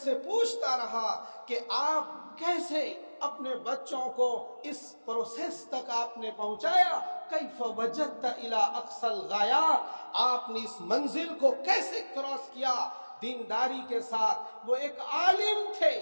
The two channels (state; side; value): inverted; both; correlation -1.00